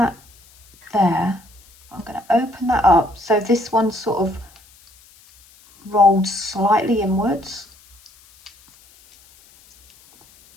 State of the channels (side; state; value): left; noise; hiss, 28 dB below the sound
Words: there. I'm going to open that up. So this one sort of rolled slightly inwards.